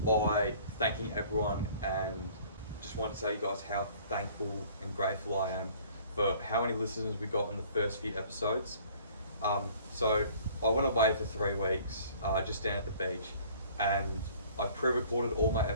by thanking everyone, and just want to tell you guys how thankful and grateful I am for how many listeners we got in the first few episodes. So I went away for 3 weeks, just down at the beach, and I pre-recorded all my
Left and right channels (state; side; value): inverted; both; correlation -0.53